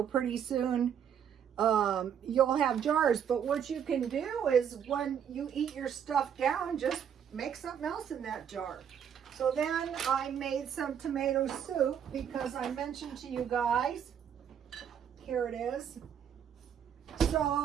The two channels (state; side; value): quieter; left; 8.5 dB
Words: pretty soon you'll have jars. But what you can do is when you eat your stuff down, just make something else in that jar. So then I made some tomato soup because I mentioned to you guys, here it is.